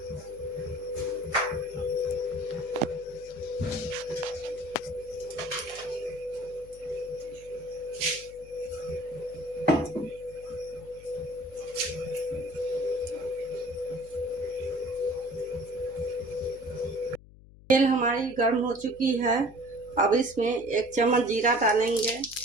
तेल हमारी गर्म हो चुकी है। अब इसमें 1 चम्मच जीरा डालेंगे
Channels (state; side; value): noise; left; hum, 21 dB below the sound